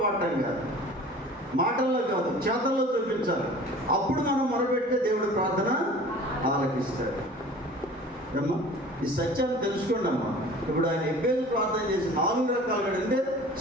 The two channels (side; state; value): both; normal; correlation 0.44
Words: పాడటం కాదు, మాటల్లో కాదు, చేతల్లో చూపించాలి. అప్పుడు మనం మొరపెడితే దేవుడు ప్రార్థన ఆలకిస్తాడు. అమ్మా, ఈ సత్యాన్ని తెలుసుకోండి అమ్మా. ఇప్పుడు ఆయన ఎబ్బేజు ప్రార్థన చేసి 4 రకాలుగా, అంటే